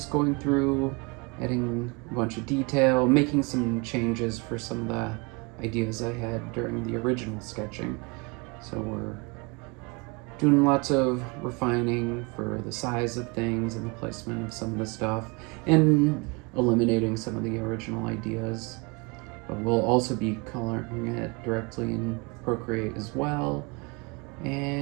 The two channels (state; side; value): quieter; left; 29.6 dB